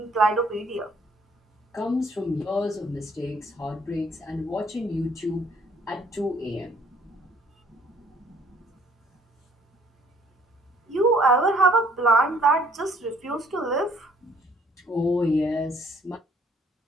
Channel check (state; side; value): normal; both; correlation 0.60